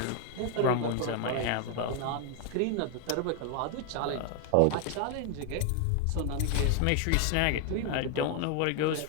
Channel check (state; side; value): different; both; correlation 0.00